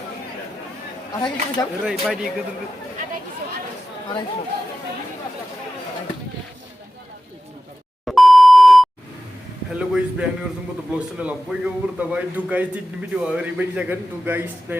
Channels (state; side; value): normal; both; correlation 0.94